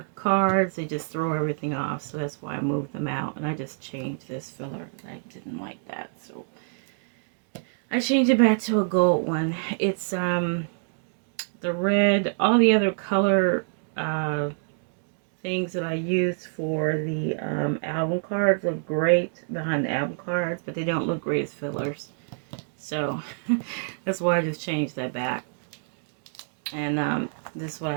cards, they just throw everything off. So that's why I moved them out. And I just changed this filler. I didn't like that. So I changed it back to a gold one. It's the red, all the other color things that I use for the album cards look great behind the album cards, but they don't look great as fillers. So that's why I just changed that back. And this is what I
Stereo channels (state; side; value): silent; left; digital silence